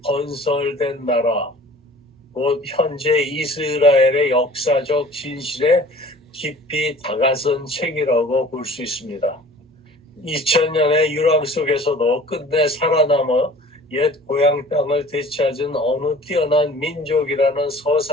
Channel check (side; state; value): both; normal; correlation 0.47